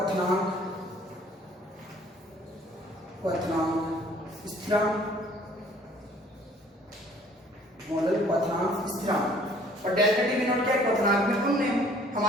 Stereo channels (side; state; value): both; normal; correlation 0.56